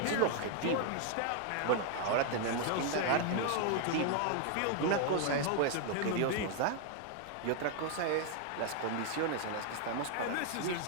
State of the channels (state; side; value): different; both; correlation 0.00